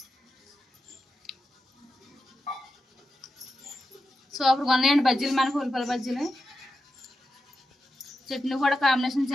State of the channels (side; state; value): both; normal; correlation 0.89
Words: సూపర్గా ఉన్నాయండి బజ్జీలు మనకు, ఉల్లిపాయల బజ్జీలు. చట్నీ కూడా కాంబినేషన్